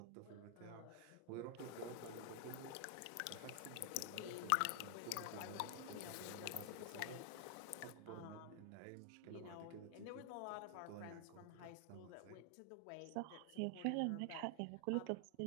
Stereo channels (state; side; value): different; both; correlation 0.00